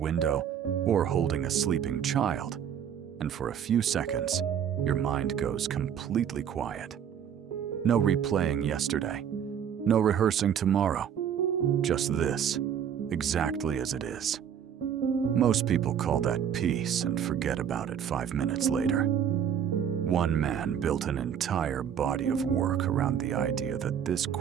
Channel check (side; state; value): left; quieter; 8.6 dB